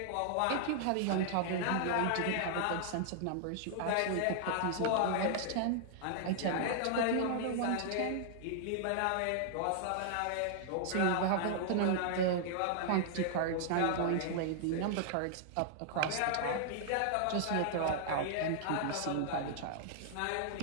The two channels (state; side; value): different; both; correlation -0.01